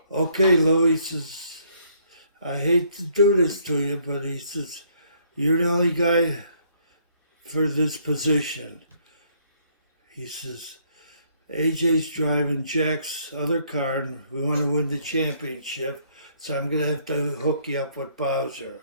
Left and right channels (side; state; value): both; inverted; correlation -0.66